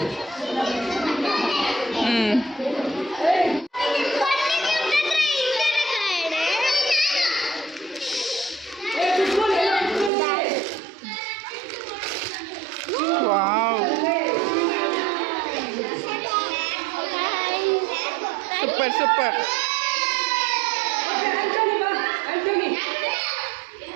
ವಾವ್, ಸೂಪರ್ ಸೂಪರ್. ಆಂಟೋನಿ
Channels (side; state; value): left; drops out; at 10.1 s